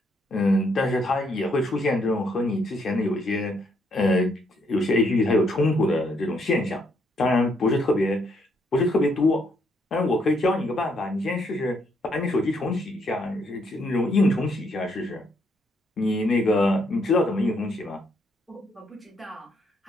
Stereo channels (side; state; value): both; normal; correlation 0.73